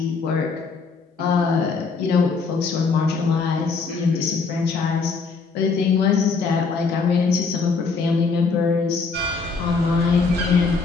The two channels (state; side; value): quieter; right; 4.6 dB